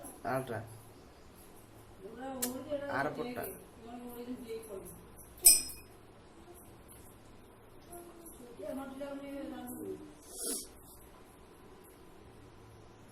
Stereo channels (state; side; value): identical; both; correlation 1.00